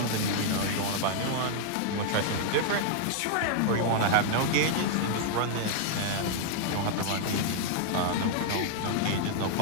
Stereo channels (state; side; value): different; both; correlation 0.00